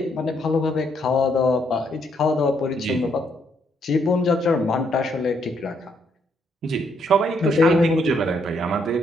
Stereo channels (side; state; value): both; normal; correlation 0.73